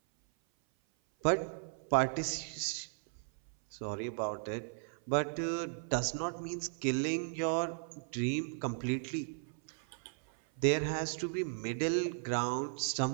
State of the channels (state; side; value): silent; left; 54 dB below the other